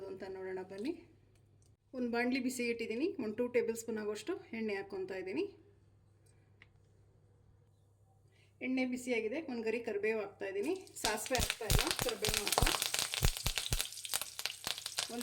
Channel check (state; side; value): identical; both; correlation 1.00